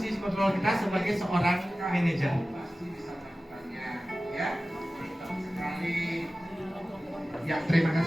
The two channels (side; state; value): both; normal; correlation 0.96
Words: kontrol kita sebagai seorang manajer. Pasti bisa melakukannya, ya. Sekali. Ya, terima